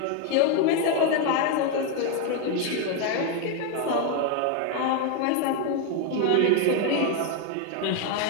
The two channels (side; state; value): both; different; correlation 0.01